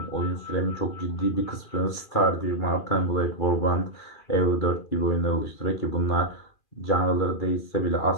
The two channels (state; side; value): late; right; 2.3 ms